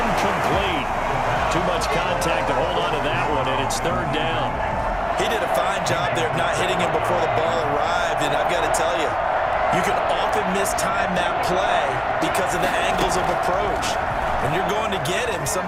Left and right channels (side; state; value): both; identical; correlation 1.00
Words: Too much contact to hold on to that one, and it's 3rd down. He did a fine job there of not hitting him before the ball arrived, and I've got to tell you, you can often mistime that play because of the angles of approach. When you're going to get him,